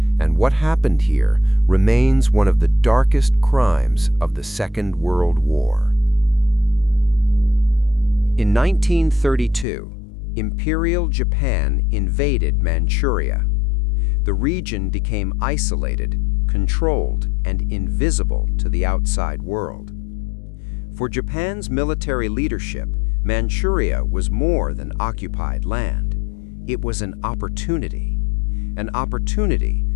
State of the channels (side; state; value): right; drops out; at 9.7 s